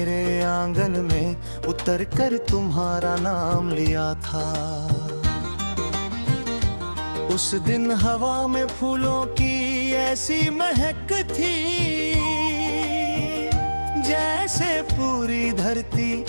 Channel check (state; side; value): inverted; both; correlation -1.00